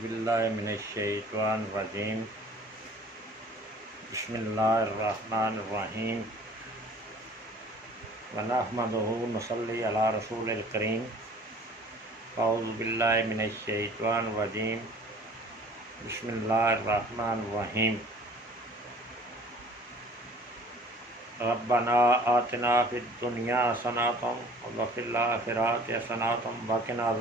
औज़ुबिल्लाहि मिनश्शैतानिर्रजीम बिस्मिल्लाहिर्रहमानिर्रहीम व नहमदुहु व नसल्ली अला रसूलिल करीम। औज़ुबिल्लाहि मिनश्शैतानिर्रजीम बिस्मिल्लाहिर्रहमानिर्रहीम। रब्बना आतिना फिद दुनिया हसनतम व फिल आखिरति हसनतम व क़िना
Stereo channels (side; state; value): both; normal; correlation 0.50